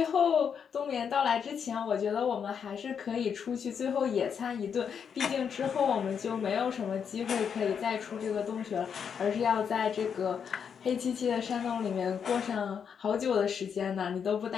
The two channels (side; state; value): right; quieter; 7.2 dB